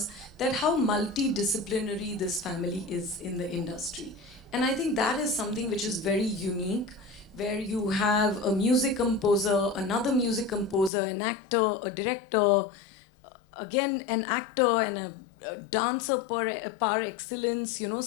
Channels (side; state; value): right; drops out; at 10.9 s